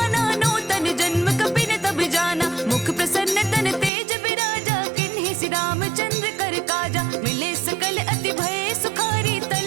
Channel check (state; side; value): drops out; left; at 3.9 s